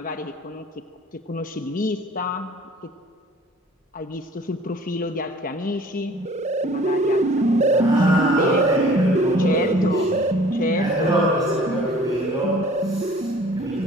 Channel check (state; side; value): normal; both; correlation 0.51